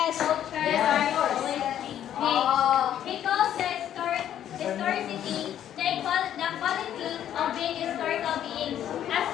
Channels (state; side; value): quieter; right; 10.7 dB